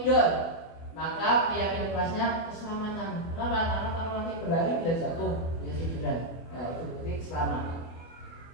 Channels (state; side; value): late; right; 24 ms